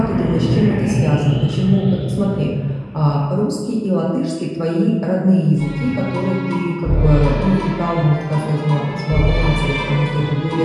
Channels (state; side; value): identical; both; correlation 1.00